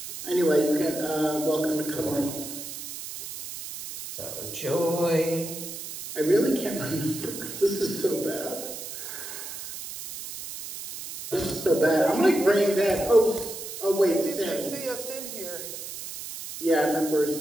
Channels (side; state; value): right; noise; hiss, 9 dB below the sound